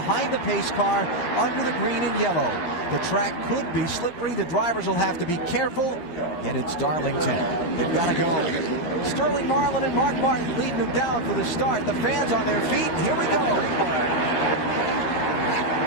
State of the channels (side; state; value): right; late; 12 ms